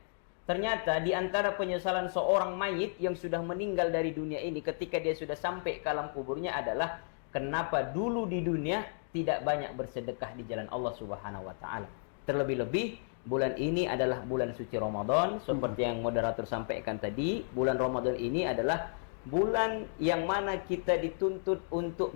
Ternyata di antara penyesalan seorang mayit yang sudah meninggal dari dunia ini ketika dia sudah sampai ke alam kuburnya adalah kenapa dulu di dunia tidak banyak bersedekah di jalan Allah Subhanahu wa taala. Terlebih-lebih bulan ini adalah bulan suci Ramadan, seperti yang moderator sampaikan tadi. Bulan Ramadan ini adalah bulan yang mana kita dituntut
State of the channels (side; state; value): right; silent; digital silence